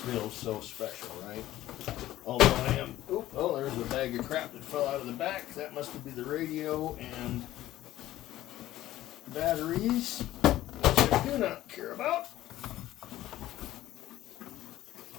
so special, right? Although I am, oh, there's a bag of crap that fell out of the back. That must be the radio and batteries, which I do not care about.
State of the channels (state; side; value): quieter; right; 14.6 dB